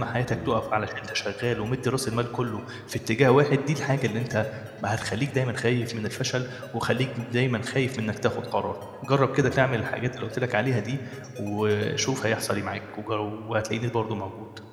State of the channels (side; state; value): both; identical; correlation 1.00